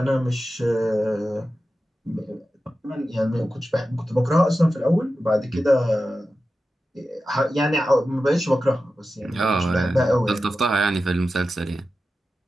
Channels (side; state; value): both; normal; correlation 0.93